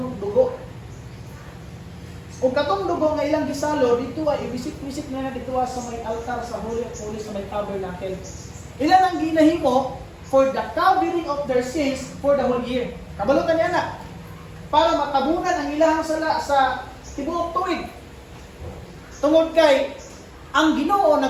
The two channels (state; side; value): identical; both; correlation 1.00